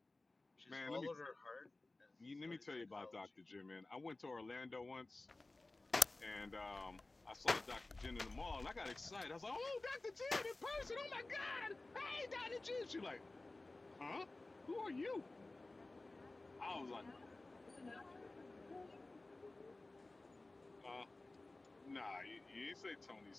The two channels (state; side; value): quieter; right; 3.0 dB